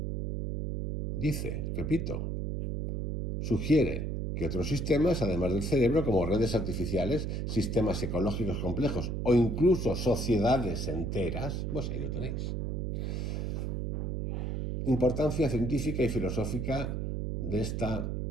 Sugiere que otros sistemas, además del cerebro, como redes artificiales, sistemas ecológicos complejos o incluso sociedades enteras, pues ahí lo tenéis. Importancia científica y filosófica de esta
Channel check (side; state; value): right; noise; hum, 1 dB below the sound